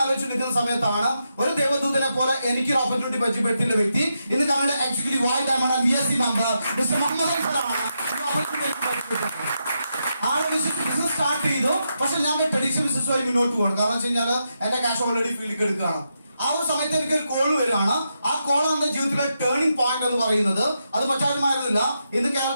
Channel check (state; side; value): inverted; both; correlation -0.84